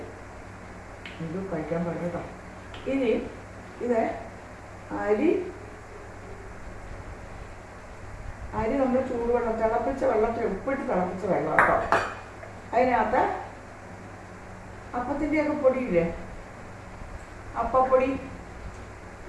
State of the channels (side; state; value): both; identical; correlation 1.00